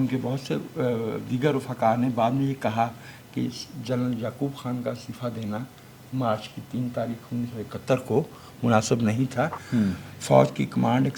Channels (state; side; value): identical; both; correlation 1.00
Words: बहुत से दीगर रफ़ाकार ने बाद में ये कहा कि जनरल याकूब खान का इस्तीफ़ा देना मार्च की 3 तारीख 1971 को मुनासिब नहीं था। फ़ौज की कमांड एक